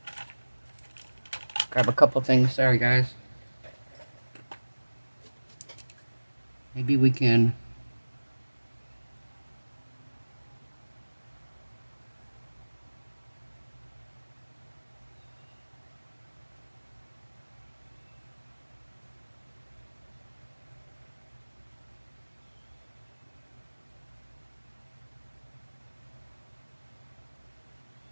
Grab a couple things, sorry guys. Maybe we can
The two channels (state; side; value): inverted; both; correlation -1.00